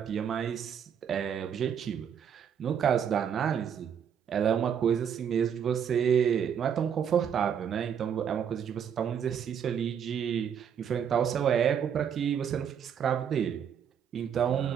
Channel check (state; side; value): quieter; left; 8.1 dB